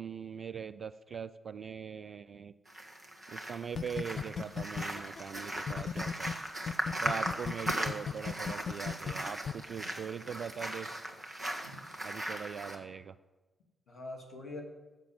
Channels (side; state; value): both; normal; correlation 0.81